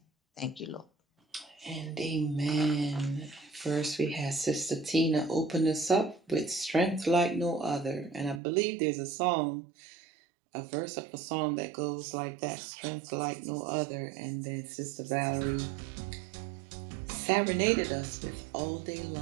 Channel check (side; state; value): left; drops out; at 8.4 s